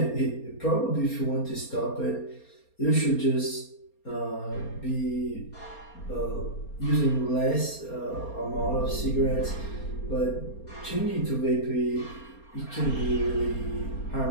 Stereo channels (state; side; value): late; right; 4.3 ms